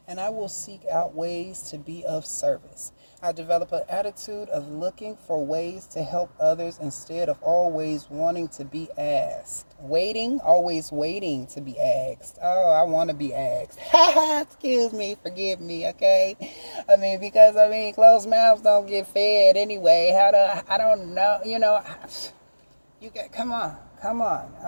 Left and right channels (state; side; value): inverted; both; correlation -1.00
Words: and I will seek out ways to be of service. I develop an attitude of looking for ways to help others instead of always wanting to be asked. Always waiting to be asked. Oh, I want to be asked. Excuse me, forgive me, okay? Because closed mouths don't get fed anyway. I don't know, you got, come on,